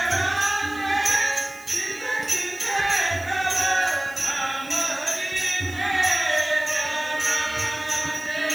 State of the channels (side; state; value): right; noise; hiss, 20 dB below the sound